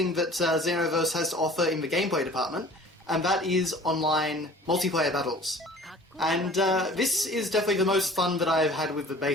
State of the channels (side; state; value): both; normal; correlation 0.47